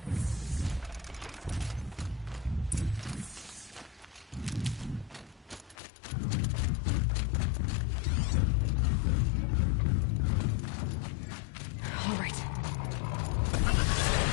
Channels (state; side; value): drops out; right; at 5.8 s